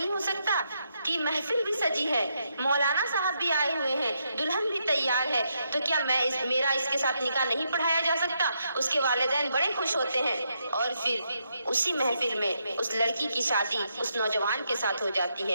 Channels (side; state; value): both; inverted; correlation -0.79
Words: ہو سکتا کہ محفل بھی سجی ہے، مولانا صاحب بھی آئے ہوئے ہیں، دلہن بھی تیار ہے، تو کیا میرا اس کے ساتھ نکاح نہیں پڑھایا جا سکتا؟ اس کے والدین بڑے خوش ہوتے ہیں اور پھر اسی محفل میں اس لڑکی کی شادی اس نوجوان کے ساتھ ہو جاتی